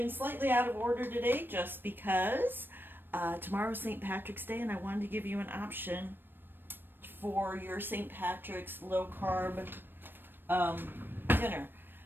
slightly out of order today just because tomorrow's St. Patrick's Day and I wanted to give you an option for your St. Patrick's low carb dinner.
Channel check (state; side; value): late; left; 0.096 ms